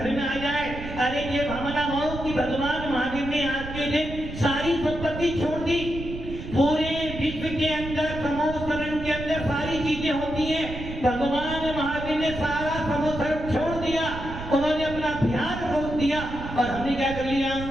में आ जाए, अरे ये भावना हो कि भगवान महावीर ने आज के दिन सारी संपत्ति छोड़ दी। पूरे विश्व के अंदर समोसरण के अंदर सारी चीजें होती हैं, भगवान महावीर ने सारा समोसरण छोड़ दिया, उन्होंने अपना ध्यान रोक दिया और हमने क्या कर लिया?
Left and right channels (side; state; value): right; noise; rumble, 9 dB below the sound